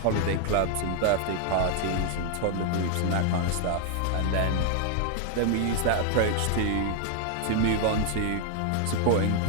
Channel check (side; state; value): both; different; correlation 0.00